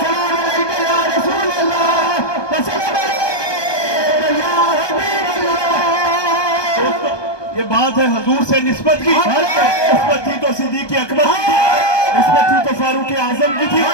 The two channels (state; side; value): late; right; 1.2 ms